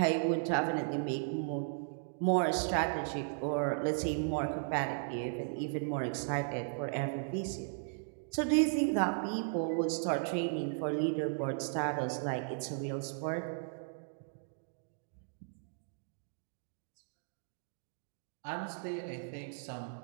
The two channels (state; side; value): silent; left; digital silence